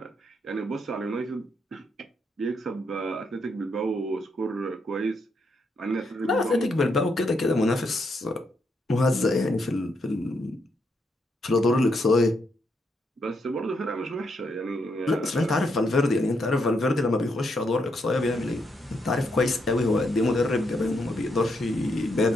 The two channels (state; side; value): normal; both; correlation 0.78